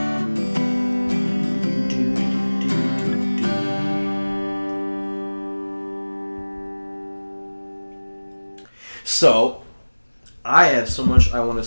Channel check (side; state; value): both; inverted; correlation -1.00